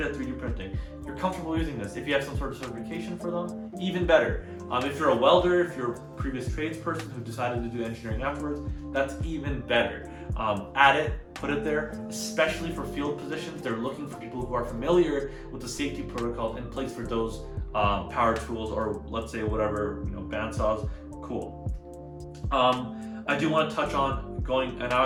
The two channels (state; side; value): identical; both; correlation 1.00